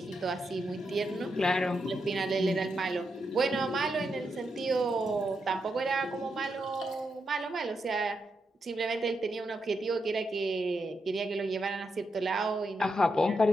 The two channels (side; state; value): both; normal; correlation 0.84